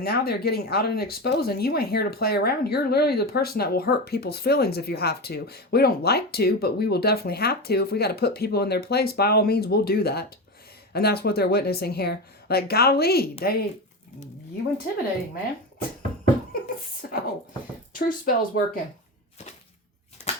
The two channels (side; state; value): both; normal; correlation 0.21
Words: now they're getting out and exposed and you ain't here to play around. You're literally the person that will hurt people's feelings if you have to. We don't like to, but we will definitely have to. If we got to put people in their place, by all means, we'll do that. And that's what they're witnessing here. Like, golly, you intimidating, man. So, truth spell's working.